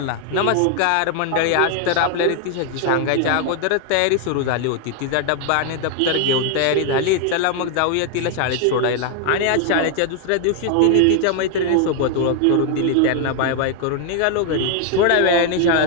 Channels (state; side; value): different; both; correlation 0.00